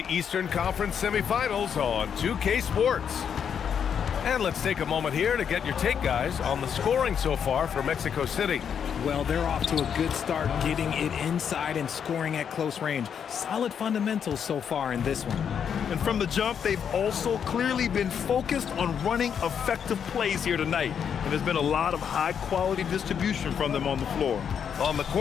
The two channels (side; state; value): right; quieter; 7.7 dB